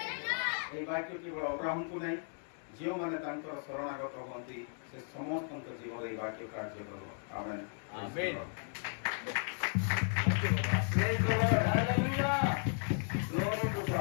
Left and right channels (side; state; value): right; silent; 54 dB below the other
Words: ए वाक्य केवल अब्राहम को नहीं जो माने तांकर शरणागत होंती से समस्त जीवन ए वाक्य कार्य करो amen amen praise the Lord hallelujah glory to